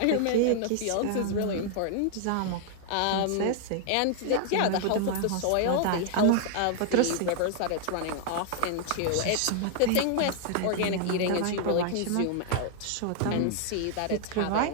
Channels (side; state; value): both; different; correlation 0.00